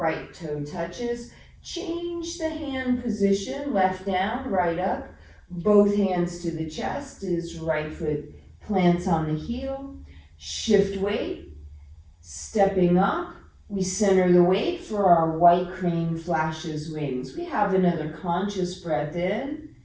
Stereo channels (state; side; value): identical; both; correlation 1.00